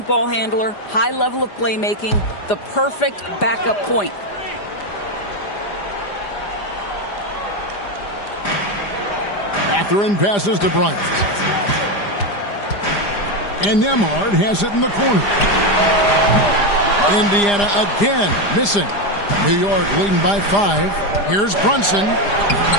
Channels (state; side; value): late; right; 5.0 ms